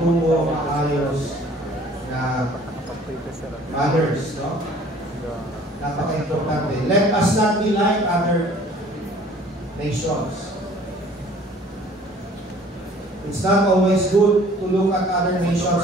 maayos na others, no? Napaka-importante. Let us not be like other nations. It's not always good to look at other nations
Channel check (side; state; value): both; normal; correlation 0.52